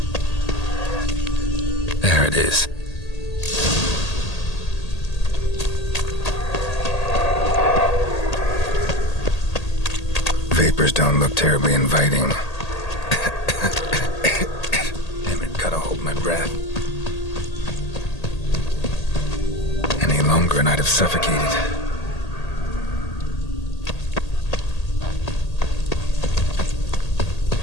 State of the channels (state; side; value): late; right; 1.8 ms